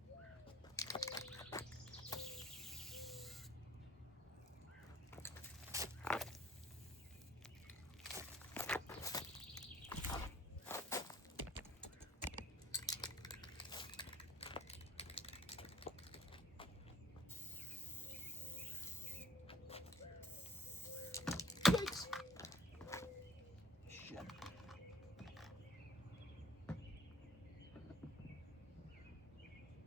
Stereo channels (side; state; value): both; normal; correlation 0.57